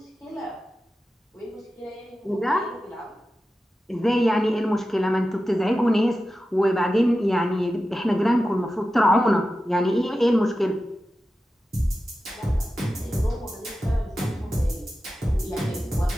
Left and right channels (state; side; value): normal; both; correlation 0.93